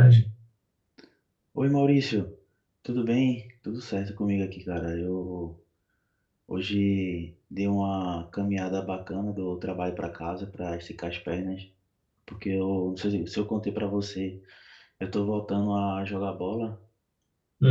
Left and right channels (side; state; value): both; identical; correlation 1.00